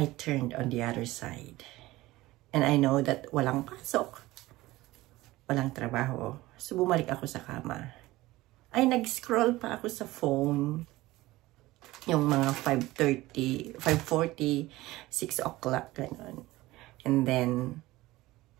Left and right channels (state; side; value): quieter; left; 18.4 dB